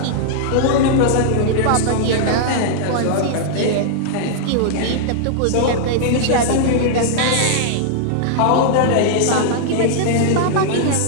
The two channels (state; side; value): different; both; correlation -0.01